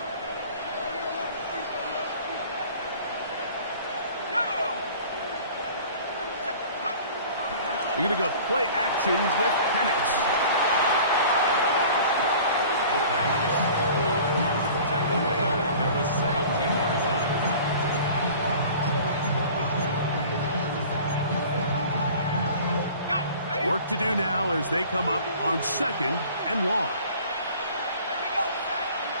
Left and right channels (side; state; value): both; inverted; correlation -0.45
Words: We're going to go play actions with Penix. Work to do now as they come up on 2nd and long.